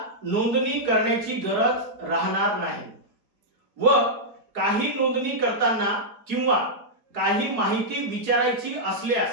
नोंदणी करण्याची गरज राहणार नाही व काही नोंदणी करताना किंवा काही माहिती विचारायची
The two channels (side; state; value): left; late; 4.6 ms